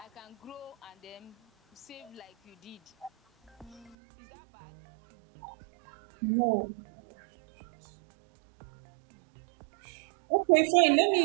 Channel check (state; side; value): drops out; left; at 4.0 s